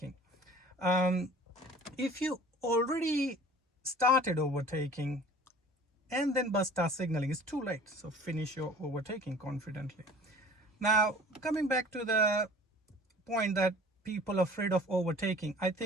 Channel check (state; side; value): normal; both; correlation 0.47